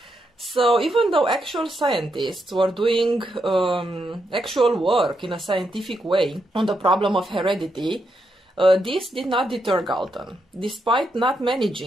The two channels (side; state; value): both; normal; correlation 0.81